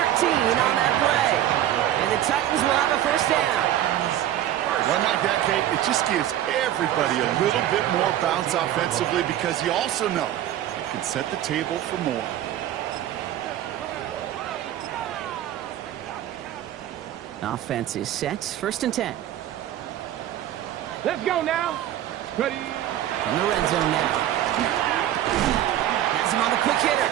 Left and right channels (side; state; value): left; quieter; 12.2 dB